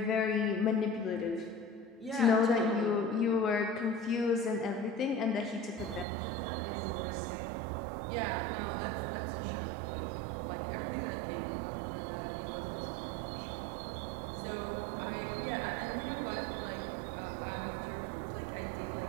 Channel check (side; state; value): left; drops out; at 6.1 s